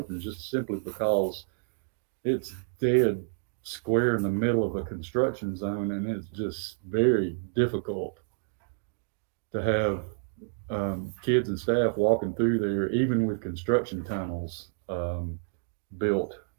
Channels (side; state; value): left; silent; digital silence